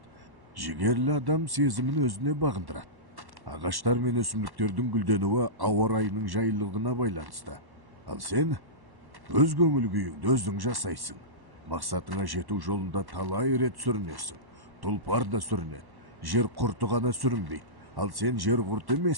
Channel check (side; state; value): left; late; 1.1 ms